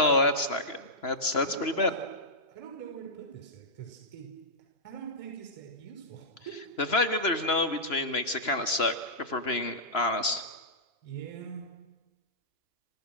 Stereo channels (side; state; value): right; late; 3.0 ms